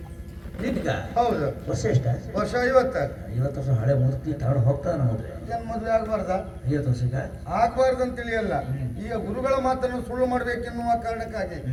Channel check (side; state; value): both; identical; correlation 1.00